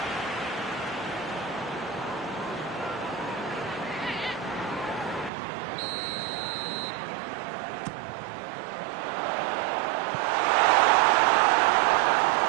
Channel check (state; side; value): drops out; left; at 5.3 s